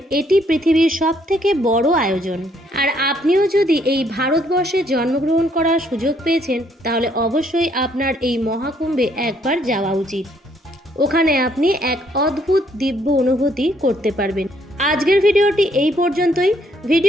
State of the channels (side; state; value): both; normal; correlation 0.68